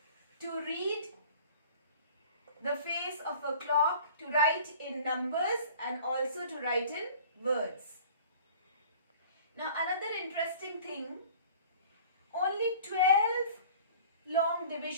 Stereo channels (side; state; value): both; inverted; correlation -0.46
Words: to read the face of a clock, to write in numbers and also to write in words. Now another interesting thing, only 12 long